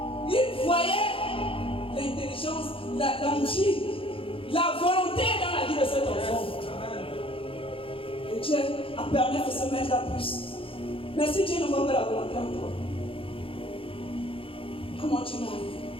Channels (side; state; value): right; late; 0.26 ms